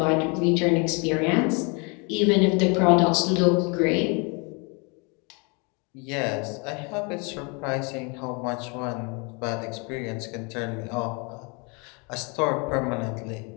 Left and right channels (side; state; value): right; quieter; 32.3 dB